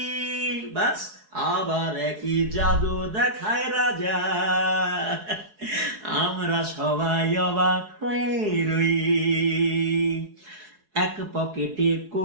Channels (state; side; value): late; left; 4.7 ms